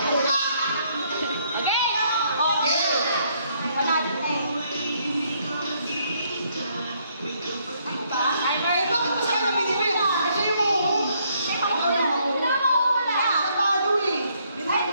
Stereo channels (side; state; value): both; inverted; correlation -0.70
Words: Okay. Panalo na eh. Bakit pa sa kanya binibig? Kasi yung mahuhong. Ikaw na mahuhong. Natalo eh.